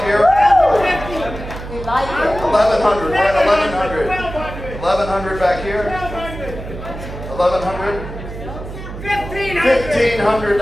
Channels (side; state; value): right; noise; hum, 11 dB below the sound